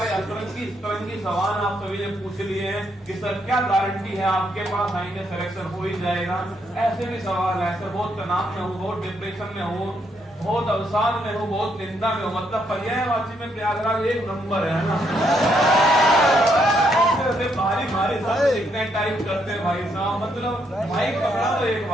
अतरंगी सवाल आप सभी ने पूछ लिए हैं कि सर क्या गारंटी है आपके पास आएंगे सिलेक्शन हो ही जाएगा। ऐसे भी सवाल है सर, बहुत तनाव में हूँ, बहुत डिप्रेशन में हूँ, बहुत अवसाद में हूँ, बहुत निंदा में हूँ, मतलब पर्यायवाची में प्रयागराज एक नंबर है ना। भारी भारी सब लिखने टाइप करते हैं भाई साहब, मतलब भाई पकड़ा तो एक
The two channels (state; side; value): normal; both; correlation 0.75